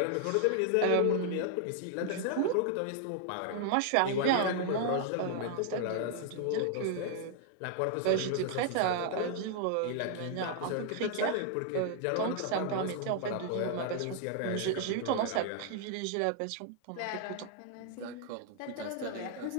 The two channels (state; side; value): different; both; correlation 0.00